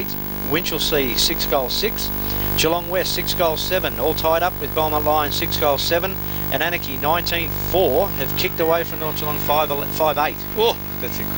Winchelsea 6 goals 6. Geelong West 6 goals 7, all tied up with Belmont Lions 6 goals 7, and Anarchy 19-4 have kicked away from North Geelong 5-8. Oh, that's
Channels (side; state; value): right; noise; rumble, 19 dB below the sound